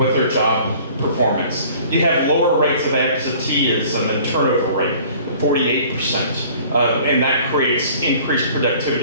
their job performance. You have lower rates of absenteeism and turnover rate, 48%. And that creates increased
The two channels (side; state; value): both; inverted; correlation -0.50